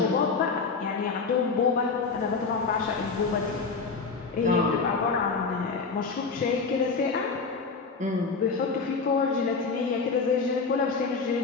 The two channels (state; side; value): quieter; right; 4.7 dB